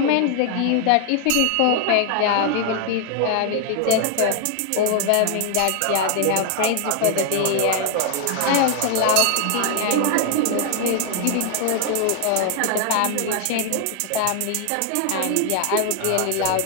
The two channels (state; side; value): different; both; correlation 0.00